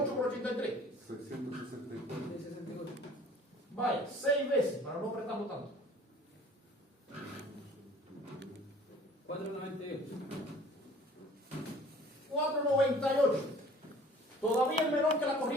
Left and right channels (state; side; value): normal; both; correlation 0.50